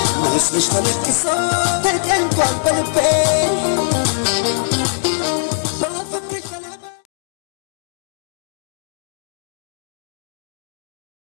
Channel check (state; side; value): silent; right; digital silence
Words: mas me está